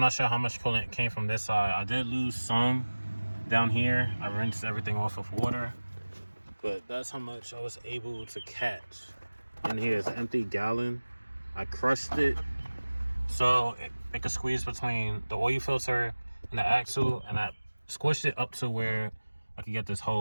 sure how much coolant came from this side. I did lose some down here. I rinsed everything off of water, but that's how much I was able to catch. And here's an empty gallon. I crushed it so it could squeeze between the oil filter and the axle, and I squished it up to where I could get this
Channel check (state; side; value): inverted; both; correlation -1.00